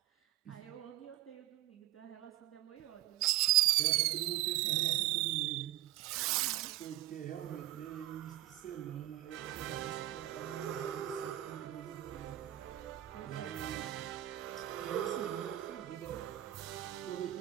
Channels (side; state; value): left; quieter; 15.5 dB